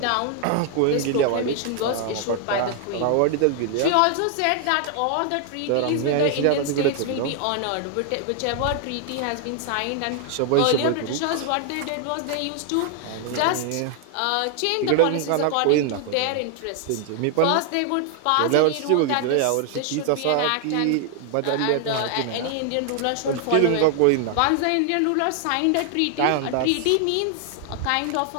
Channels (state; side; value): different; both; correlation 0.00